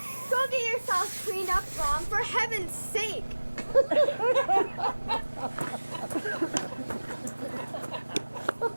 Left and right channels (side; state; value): both; inverted; correlation -1.00